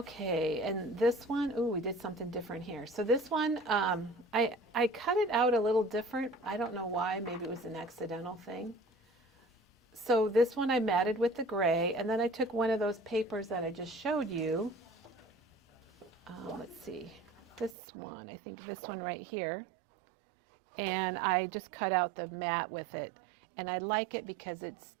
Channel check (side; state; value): left; drops out; at 17.8 s